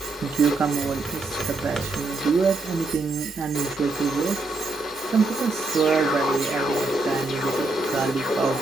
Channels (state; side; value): quieter; left; 3.2 dB